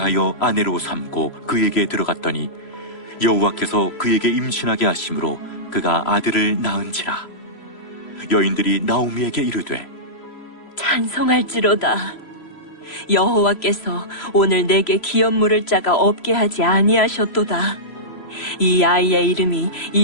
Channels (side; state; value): right; late; 3.0 ms